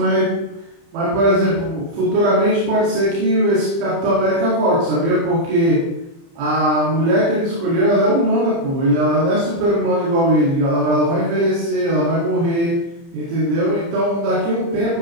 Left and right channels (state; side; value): late; left; 30 ms